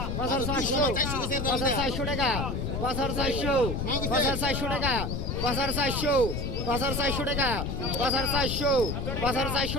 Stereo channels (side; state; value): left; noise; rumble, 2 dB below the sound